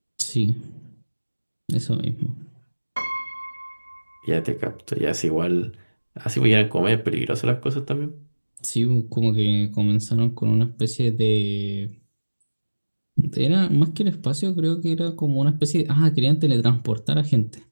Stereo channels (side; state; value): both; inverted; correlation -1.00